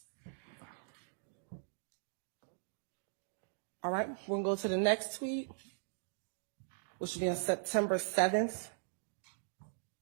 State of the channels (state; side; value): silent; left; digital silence